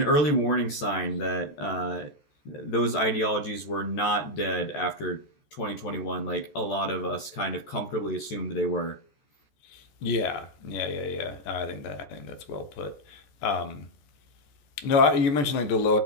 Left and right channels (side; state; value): right; late; 14 ms